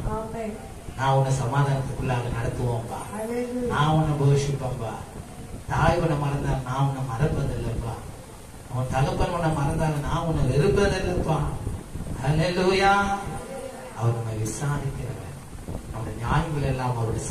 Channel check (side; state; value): both; identical; correlation 1.00